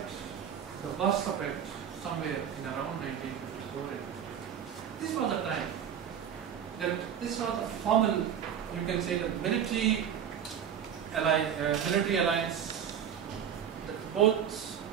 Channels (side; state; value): left; quieter; 8.7 dB